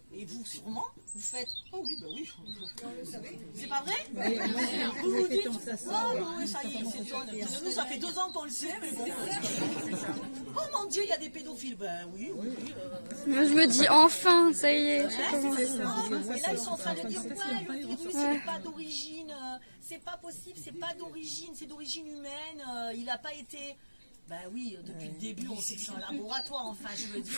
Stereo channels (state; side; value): inverted; both; correlation -1.00